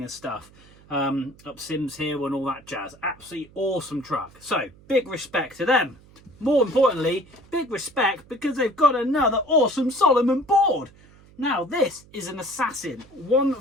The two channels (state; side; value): noise; right; hum, 25 dB below the sound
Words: and stuff. Up Sims Hill and all that jazz. Absolutely awesome truck. So, big respect to them. More importantly, big respect because they've got another awesome Salomon board. Now, this is an Assassin